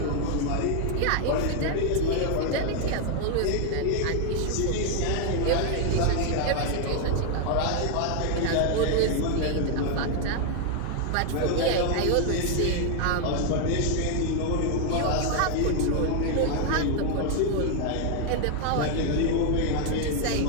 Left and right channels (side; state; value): both; different; correlation 0.00